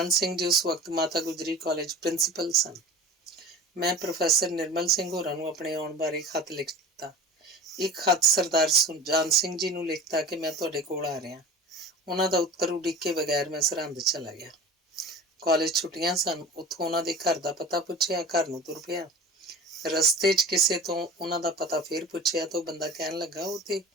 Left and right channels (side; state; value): both; normal; correlation 0.37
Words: ਸਿੰਘ ਜੀ ਉਸ ਵਕਤ ਮਾਤਾ ਗੁਜਰੀ ਕਾਲਜ ਪ੍ਰਿੰਸੀਪਲ ਸਨ। ਮੈਂ ਪ੍ਰੋਫੈਸਰ ਨਿਰਮਲ ਸਿੰਘ ਹੋਰਾਂ ਨੂੰ ਆਪਣੇ ਆਉਣ ਬਾਰੇ ਖਤ ਲਿਖ ਦਿੱਤਾ। ਇੱਕ ਖਤ ਸਰਦਾਰ ਸੁਜਾਨ ਸਿੰਘ ਜੀ ਨੂੰ ਲਿਖਤਾ ਕਿ ਮੈਂ ਤੁਹਾਡੇ ਕੋਲ ਆ ਰਿਹਾ। ਉਹਨਾਂ ਦਾ ਉੱਤਰ ਉਡੀਕੇ ਬਗੈਰ ਮੈਂ ਸਰਹੰਦ ਚਲਾ ਗਿਆ। ਕਾਲਜ ਛੁੱਟੀਆਂ ਸਨ। ਉੱਥੋਂ ਉਹਨਾਂ ਦੇ ਘਰ ਦਾ ਪਤਾ ਪੁੱਛਿਆ, ਘਰ ਨੂੰ ਤੁਰ ਪਿਆ। ਰਸਤੇ 'ਚ ਕਿਸੇ ਤੋਂ ਉਹਨਾਂ ਦਾ ਪਤਾ ਫੇਰ ਪੁੱਛਿਆ ਤਾਂ ਉਹ ਬੰਦਾ ਕਹਿਣ ਲੱਗਾ